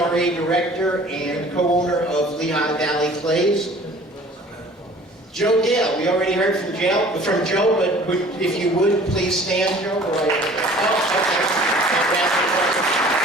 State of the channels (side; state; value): both; normal; correlation 0.48